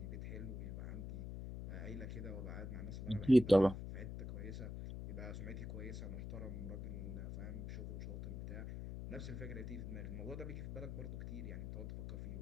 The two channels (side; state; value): left; noise; hum, 6 dB below the sound